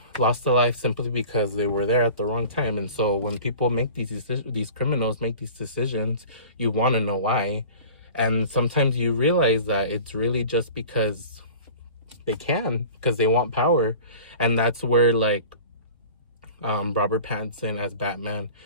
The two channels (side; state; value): both; inverted; correlation -0.41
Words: lost their life simply because they were there at the wrong time. And so when people make these criminals make these decisions, you want to know why. And sometimes you realize that it's really just because they can, because they want power. And that's where like Robert Pattinson as Batman,